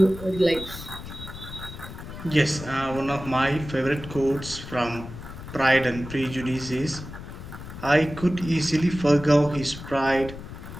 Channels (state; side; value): noise; left; rumble, 12 dB below the sound